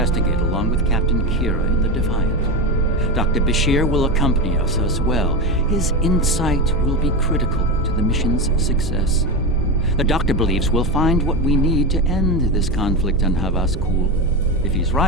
along with Captain Kira in the Defiant. Dr. Bashir will accompany us as well. His insight will be critical to the mission's success. The doctor believes we'll find what we need to end this conflict on Havas Kul. If he's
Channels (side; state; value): both; normal; correlation 0.17